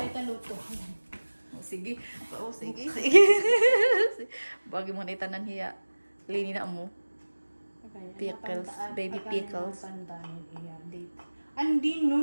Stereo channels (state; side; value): inverted; both; correlation -1.00